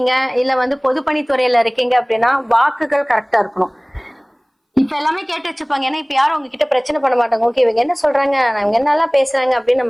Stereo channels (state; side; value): identical; both; correlation 1.00